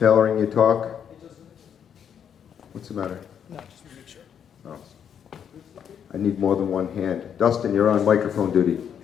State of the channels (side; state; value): right; quieter; 8.3 dB